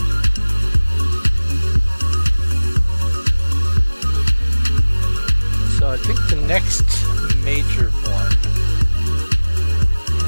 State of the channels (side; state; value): both; inverted; correlation -1.00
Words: So I think the next major one,